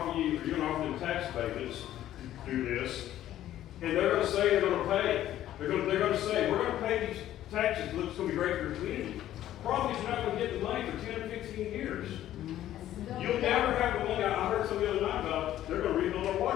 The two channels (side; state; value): right; quieter; 12.7 dB